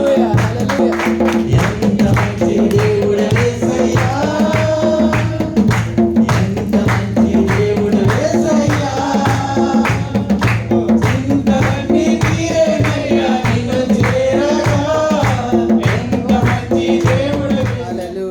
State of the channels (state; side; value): identical; both; correlation 1.00